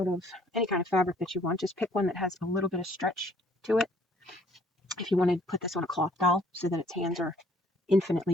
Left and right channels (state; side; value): normal; both; correlation 0.61